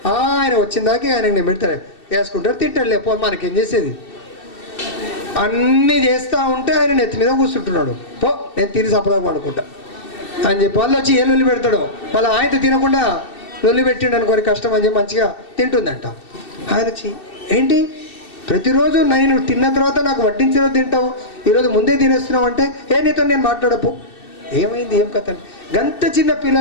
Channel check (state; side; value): late; right; 2.7 ms